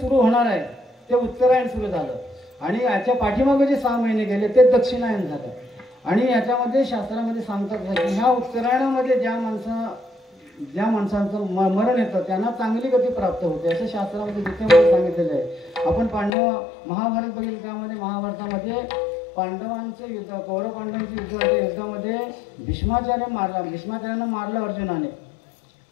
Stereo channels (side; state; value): right; drops out; at 16.3 s